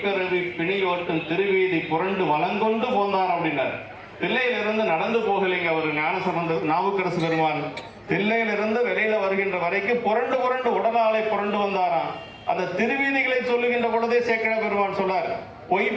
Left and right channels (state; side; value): identical; both; correlation 1.00